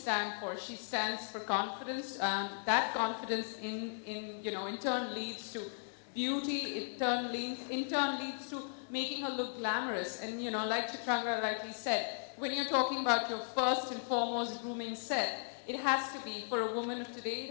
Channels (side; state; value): right; silent; digital silence